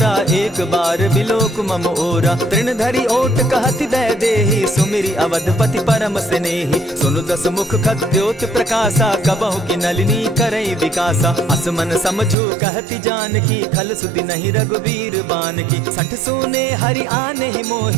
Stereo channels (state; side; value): drops out; left; at 12.4 s